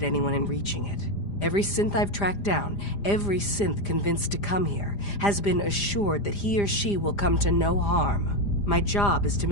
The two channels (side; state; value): right; late; 5.0 ms